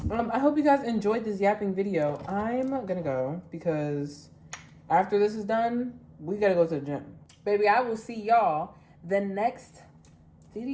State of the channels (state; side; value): identical; both; correlation 1.00